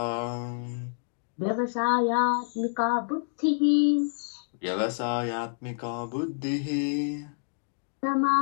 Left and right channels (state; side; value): silent; right; digital silence